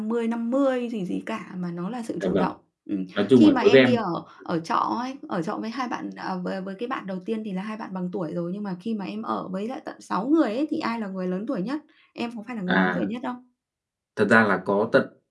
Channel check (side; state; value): both; identical; correlation 1.00